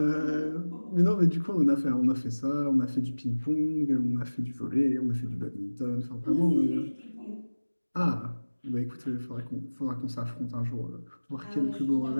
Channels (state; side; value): inverted; both; correlation -1.00